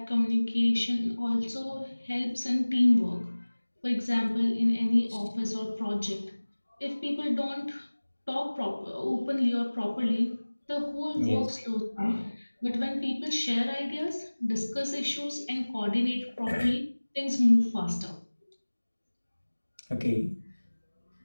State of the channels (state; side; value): inverted; both; correlation -1.00